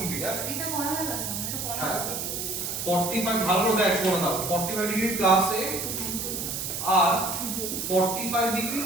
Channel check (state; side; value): noise; right; hiss, 4 dB below the sound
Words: হ্যাঁ এটা করা হয়ে গেছে আমার এটা করা আছে 45 ভালো দেখ শোনা দাও 45 ডিগ্রি প্লাস a আর 45 ডিগ্রি